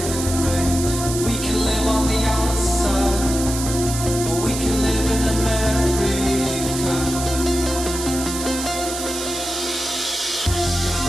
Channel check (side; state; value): right; noise; hiss, 6 dB below the sound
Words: rain. We can live on the outside, or we can live in America.